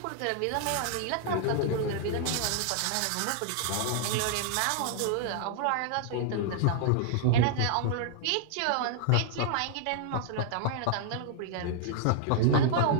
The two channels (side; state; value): both; different; correlation -0.01